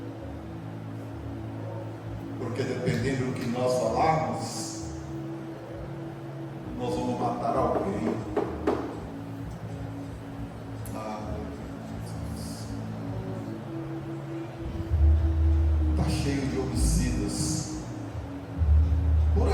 Porque dependendo do que nós falarmos, nós vamos matar alguém. Está cheio de homicidas por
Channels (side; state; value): both; identical; correlation 1.00